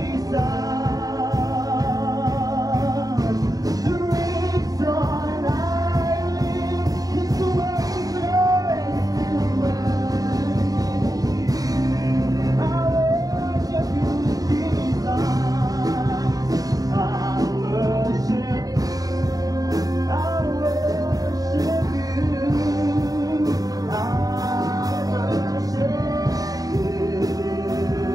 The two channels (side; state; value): left; late; 0.18 ms